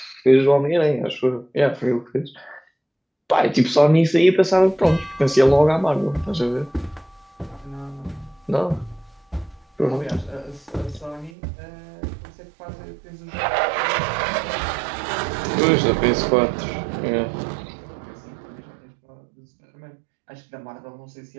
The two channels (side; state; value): left; drops out; at 11.3 s